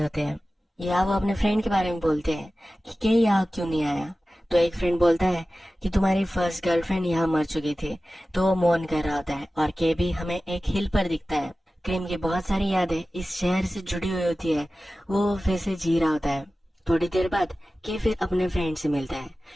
होते हैं। यहाँ वो अपने फ्रेंड के बारे में बोलते हैं कि के यहाँ क्यों नहीं आया। तो एक फ्रेंड बोलता है कि तुम्हारी फर्स्ट गर्लफ्रेंड यहाँ मर चुकी थी, तो वो मौन कर रहा होता है। और के भी हमें एक हिल पर दिखता है। क्रीम की बहुत सारी यादें इस शहर से जुड़ी हुई होती है, वो फिर से जी रहा होता है। थोड़ी देर बाद के फिर अपने फ्रेंड से मिलता है।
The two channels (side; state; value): both; normal; correlation 0.96